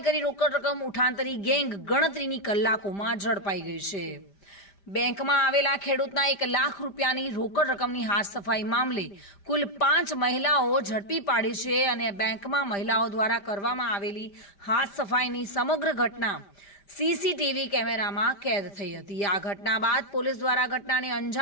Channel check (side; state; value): right; late; 5.1 ms